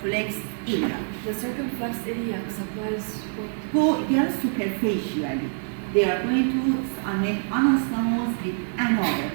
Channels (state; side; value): silent; left; 61 dB below the other